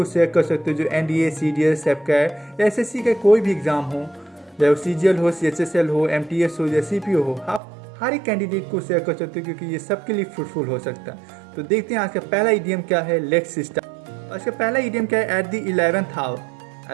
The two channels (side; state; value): left; drops out; at 7.6 s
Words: शेयर कर सकते हो जो NDA, CDS, सेपकैट या SSC का कोई भी एग्ज़ाम हो, चाहे वो CGL हो, CHSL हो, MTS हो या CPO हो, आप हर एक कैंडिडेट को शेयर कर सकते हो, क्योंकि ये सबके लिए फ्रूटफुल हो सकता है। तो देखते हैं आज का पहला इडियम क्या है। Let's start. इसका पहला इडियम क्या है? At the 11th hour.